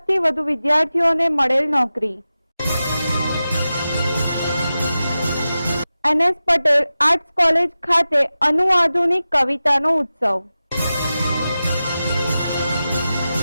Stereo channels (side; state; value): both; inverted; correlation -0.94